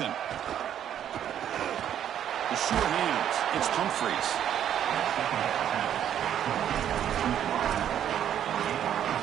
The sure hands. It's Humphreys.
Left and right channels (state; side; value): quieter; left; 10.0 dB